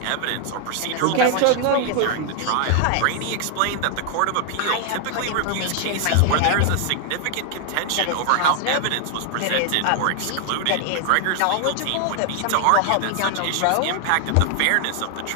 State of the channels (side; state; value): both; different; correlation 0.00